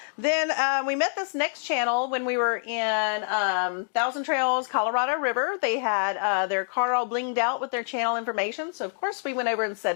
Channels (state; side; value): silent; right; digital silence